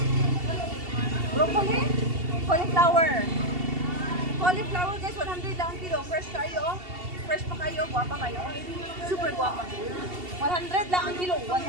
Broccoli, cauliflower guys 100 lang ang kilo. Fresh kayo. Fresh pa kayo, guwapa kayo. Super guwapa. 100 lang ang kilo,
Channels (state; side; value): late; left; 2.7 ms